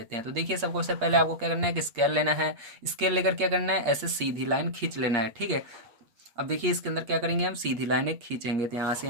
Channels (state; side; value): late; left; 8.6 ms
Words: हैं। तो देखिए सबसे पहले आपको क्या करना है कि स्केल लेना है, स्केल लेकर क्या करना है, ऐसे सीधी लाइन खींच लेना है, ठीक है। अब देखिए इसके अंदर क्या करेंगे, हम सीधी लाइन एक खींचेंगे, तो यहाँ से